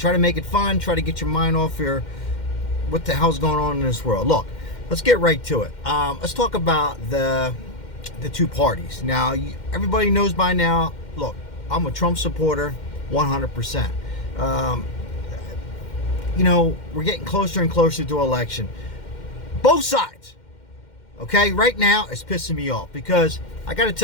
to make it fun, try to get your mind off your what the hell's going on in this world. Look, let's get right to it. Let's talk about the two parties. Now, everybody knows by now, look, I'm a Trump supporter, 100%. We're getting closer and closer to election. Both sides. Okay, right now it's pissing me off because I got to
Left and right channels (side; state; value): right; late; 2.1 ms